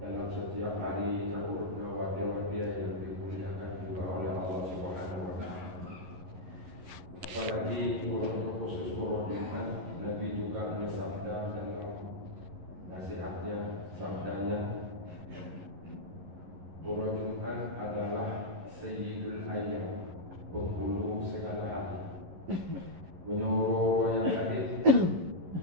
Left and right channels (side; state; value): left; late; 11 ms